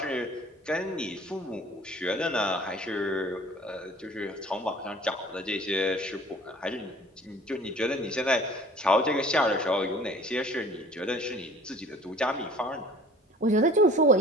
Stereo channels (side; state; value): both; normal; correlation 0.48